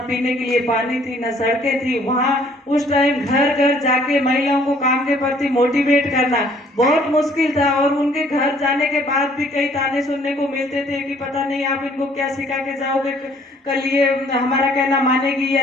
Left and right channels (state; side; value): normal; both; correlation 0.60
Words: के लिए पानी थी, न सड़कें थी। वहां उस टाइम घर घर जाके महिलाओं को काम के प्रति मोटिवेट करना बहुत मुश्किल था, और उनके घर जाने के बाद भी कई ताने सुनने को मिलते थे कि पता नहीं आप इनको क्या सिखा के जाओगे, कल ये हमारा कहना मानेगी या